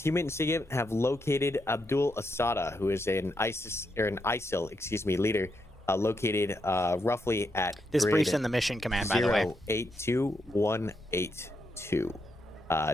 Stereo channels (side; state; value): both; normal; correlation 0.82